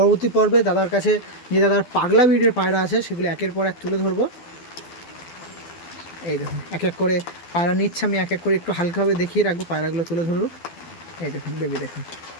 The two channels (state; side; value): late; right; 12 ms